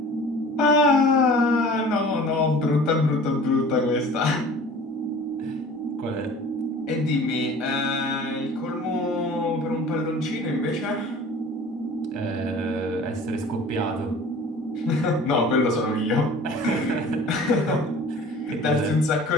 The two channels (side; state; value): both; normal; correlation 0.44